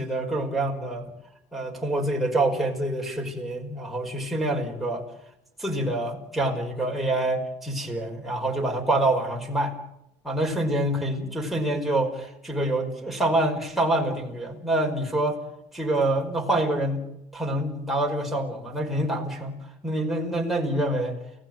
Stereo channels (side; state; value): both; normal; correlation 0.55